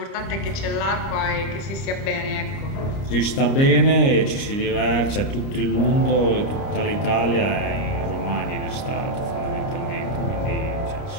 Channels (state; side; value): late; right; 30 ms